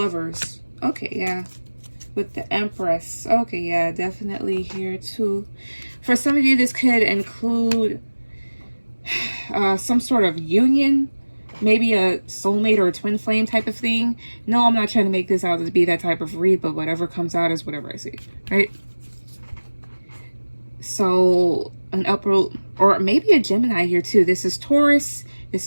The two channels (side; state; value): both; inverted; correlation -1.00